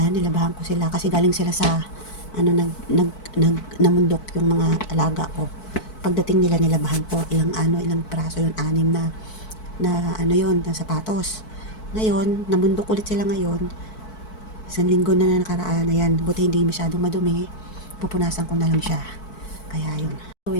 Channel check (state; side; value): late; right; 4.6 ms